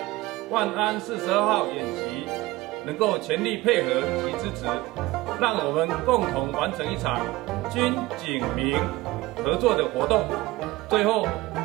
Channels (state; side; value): quieter; left; 19.3 dB